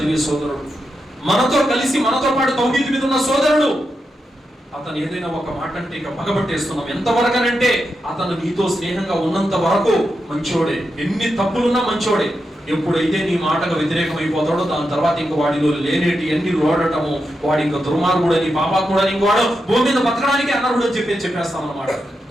సోదరుడు, మనతో కలిసి మనతో పాటు తౌహీద్ మీద ఉన్న సోదరుడు, అతను ఏదైనా ఒక మాట అంటే ఇక పగబట్టేస్తున్నాం. ఎంతవరకనంటే అతను నీతో స్నేహంగా ఉన్నంత వరకు మంచోడే, ఎన్ని తప్పులున్నా మంచోడే. ఎప్పుడైతే నీ మాటకు వ్యతిరేకం అయిపోతాడో దాని తర్వాత ఇంక వాడిలో లేనేటి అన్ని రోడటము, వాడి ఇంకా దుర్మార్గుడని, పాపాత్ముడని, ఇంకోవాడు భూమి మీద బతకడానికి అనర్హుడు అని చెప్పేస్తాం అన్నమాట.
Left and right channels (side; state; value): both; normal; correlation 0.87